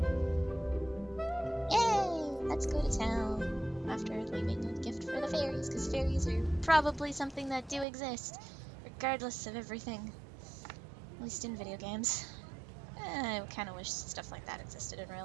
Yay! Let's go to town. After leaving a gift for the fairies, because fairies are probably something that do exist, regardless of everything. At least in video games. I kind of wish stuff like that existed in real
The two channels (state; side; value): drops out; left; at 7.9 s